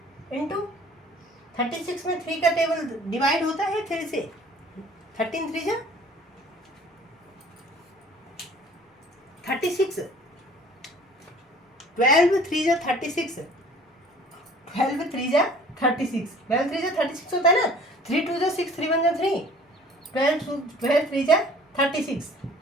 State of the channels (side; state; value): both; normal; correlation 0.50